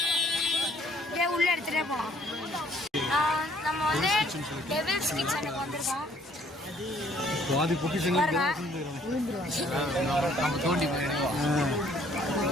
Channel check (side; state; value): both; normal; correlation 0.62